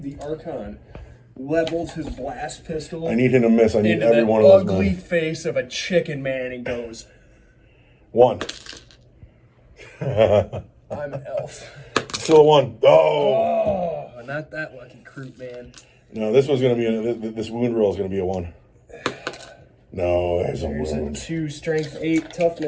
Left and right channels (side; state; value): both; identical; correlation 1.00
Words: The Archon levels his blast pistol I need him to miss. I need into every the one of those. ugly Men. face of a chicken man and goes, 1. I'm elf. Still a 1. Oh. Oh, not that lucky Kroot, man. No, this was going to be this wound roll is going to be a 1. No, there's a There's a wound. 2 strength 8